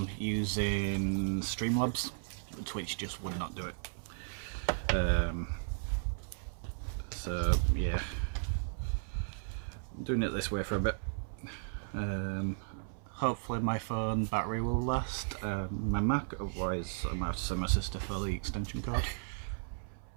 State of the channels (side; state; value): left; silent; 54 dB below the other